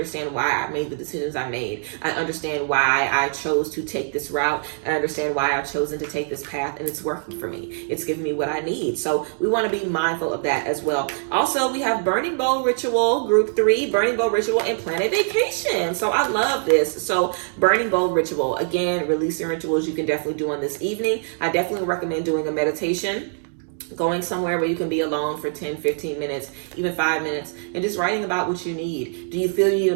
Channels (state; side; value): silent; left; digital silence